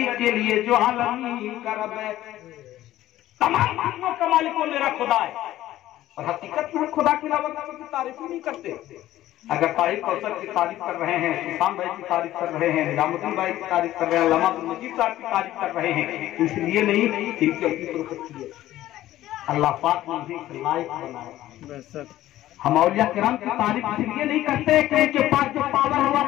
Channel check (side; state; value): right; quieter; 14.4 dB